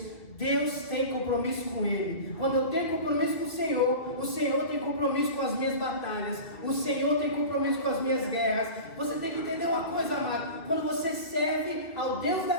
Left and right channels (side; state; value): right; late; 2.0 ms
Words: Deus tem compromisso com ele. Quando eu tenho compromisso com o Senhor tem compromisso com as minhas batalhas. O Senhor tem compromisso com as minhas guerras. Você tem que entender uma coisa, amado. Quando você serve ao Deus